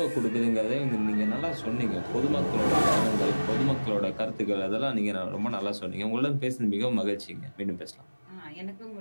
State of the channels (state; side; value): inverted; both; correlation -1.00